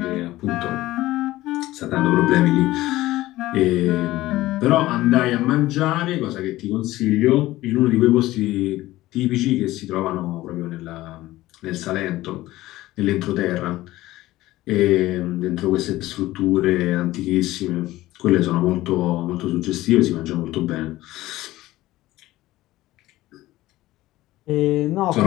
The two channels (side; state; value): right; quieter; 16.9 dB